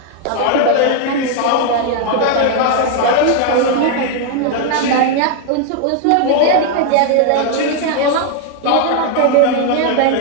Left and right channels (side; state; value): both; different; correlation 0.00